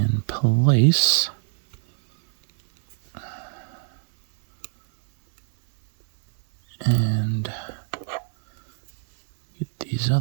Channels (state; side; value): silent; left; 64 dB below the other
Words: place. And get these